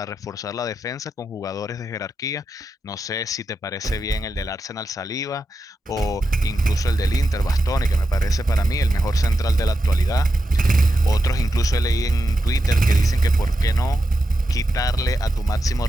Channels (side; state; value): both; normal; correlation 0.89